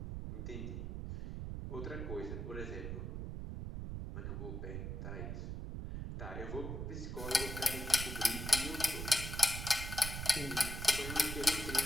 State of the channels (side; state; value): right; noise; rumble, 5 dB below the sound